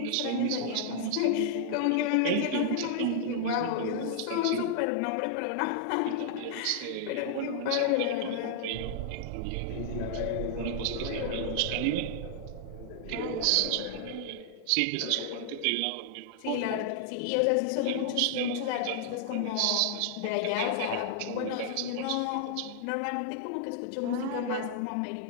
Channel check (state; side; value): different; both; correlation -0.01